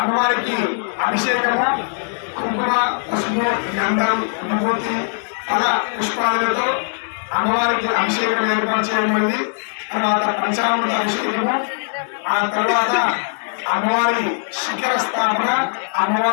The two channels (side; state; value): right; silent; 59 dB below the other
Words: అభిషేకము, కుంకుమ, పసుపు, గంధం, విభూతి, ఫల పుష్పాదులతో అమ్మవారికి అభిషేకం ఏర్పాటు చేయబడింది. తర్వాత పంచామృత అభిషేకము, ఆ తర్వాత అమ్మవారి శిఖర స్థాపన,